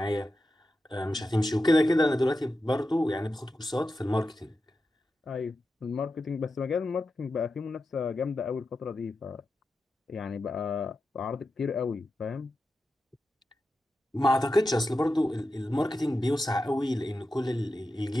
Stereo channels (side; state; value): both; normal; correlation 0.90